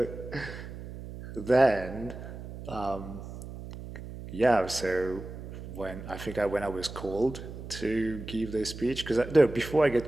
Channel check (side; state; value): right; noise; hum, 11 dB below the sound